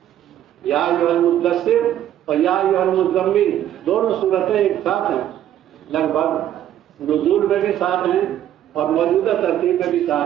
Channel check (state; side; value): quieter; left; 11.5 dB